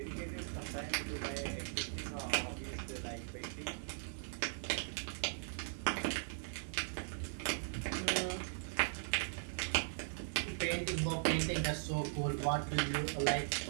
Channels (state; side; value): silent; left; 52 dB below the other